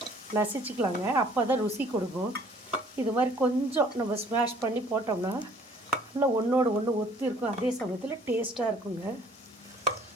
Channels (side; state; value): both; normal; correlation 0.56